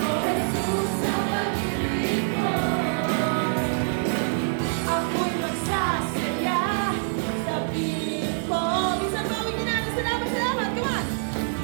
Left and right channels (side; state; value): left; silent; 57 dB below the other